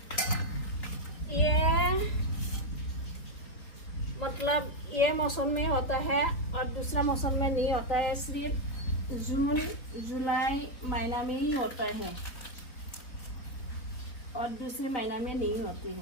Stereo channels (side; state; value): right; late; 3.8 ms